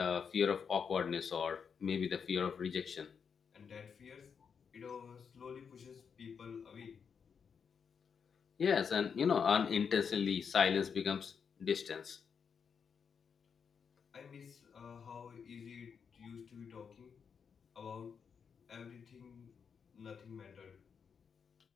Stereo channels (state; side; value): quieter; right; 6.5 dB